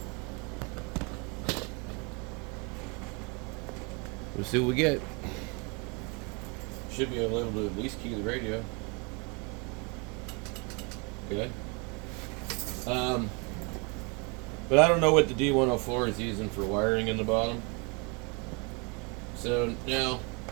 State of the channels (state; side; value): quieter; left; 31.4 dB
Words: We'll see what we get. Should be able to at least key the radio. Okay. But I don't know what the D104 is using for wiring in the bottom. So now,